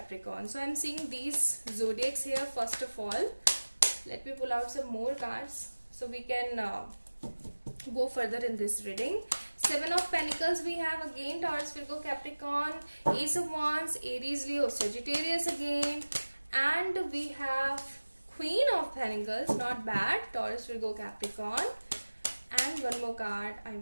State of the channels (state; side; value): inverted; both; correlation -1.00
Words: So I'm seeing these zodiacs here first of all. Let me pull out some more cards so we can go further in this reading. Seven of Pentacles we have again, Taurus, Virgo, Capricorn. Ace of Wands, Aries, Leo, Sagittarius again. And we have Queen of Pentacles, not bad, Taurus, Virgo, Capricorn. And one more card I